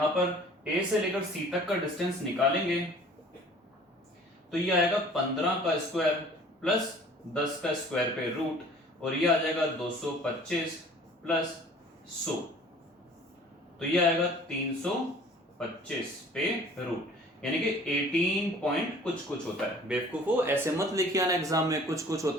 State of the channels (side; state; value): both; normal; correlation 0.50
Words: पर A से लेकर C तक का डिस्टेंस निकालेंगे तो ये आएगा 15 का स्क्वायर प्लस 10 का स्क्वायर पे रूट, और ये आ जाएगा 225 प्लस 100, तो ये आएगा 325 पे रूट, यानी कि 18 पॉइंट कुछ कुछ होता है। बेवकूफो ऐसे मत लिखिए आना एग्जाम में कुछ कुछ